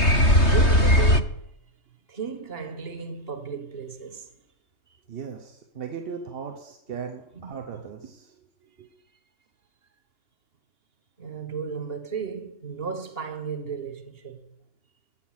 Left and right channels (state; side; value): late; right; 3.2 ms